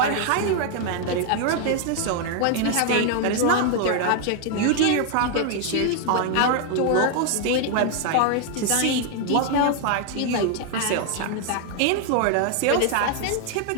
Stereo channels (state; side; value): different; both; correlation 0.00